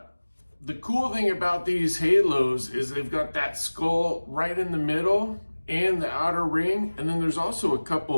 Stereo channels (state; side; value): inverted; both; correlation -1.00